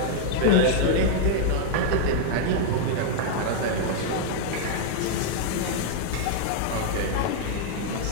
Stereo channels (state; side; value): different; both; correlation -0.01